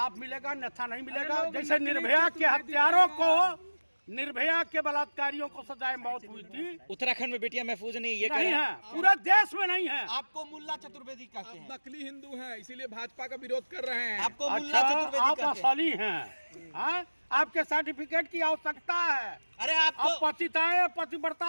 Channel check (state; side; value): inverted; both; correlation -1.00